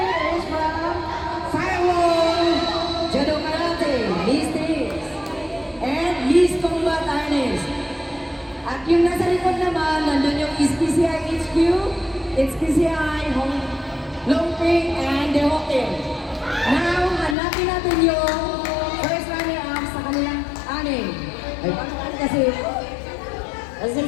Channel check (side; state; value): right; drops out; at 17.4 s